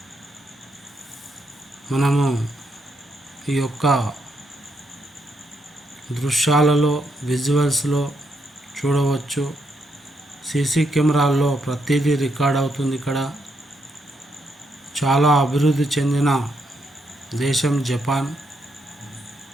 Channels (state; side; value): normal; both; correlation 0.78